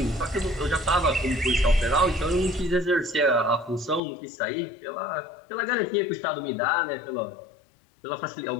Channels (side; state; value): right; drops out; at 4.0 s